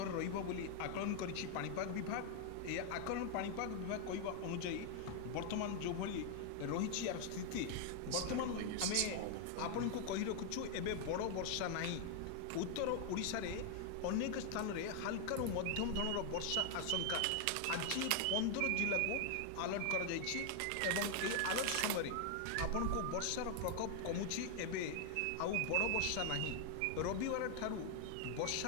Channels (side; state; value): both; different; correlation 0.00